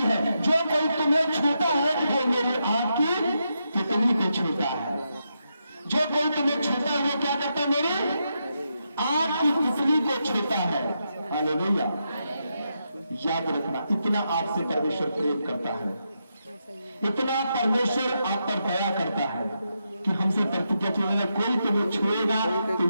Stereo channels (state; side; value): inverted; both; correlation -0.84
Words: है, जो कोई तुम्हें छूता है वो मेरी आंख की तितली को छूता है। जो कोई तुम्हें छूता है वो क्या करता है? मेरी आंख की तितली को छूता है। हालेलुया। याद रखना, इतना आपसे परमेश्वर प्रेम करता है, इतना परमेश्वर आप पर दया करता है कि हमसे प्रतिज्ञा की है, कोई तुम्हें छुएगा तो